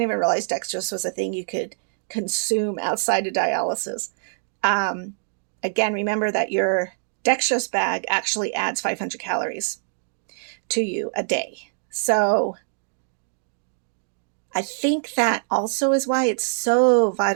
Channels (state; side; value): silent; left; digital silence